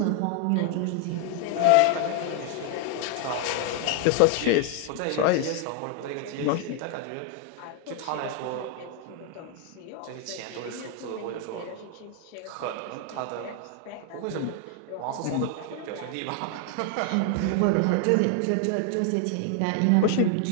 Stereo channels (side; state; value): both; different; correlation 0.00